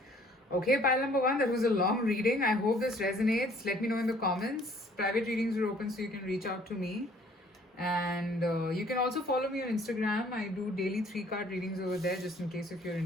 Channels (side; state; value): both; normal; correlation 0.58